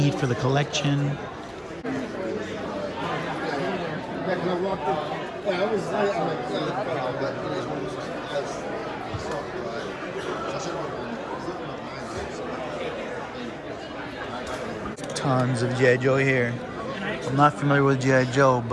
for the collection. Tons of G.I. Joe here. I'm not familiar with G.I. Joe,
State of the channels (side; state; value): both; identical; correlation 1.00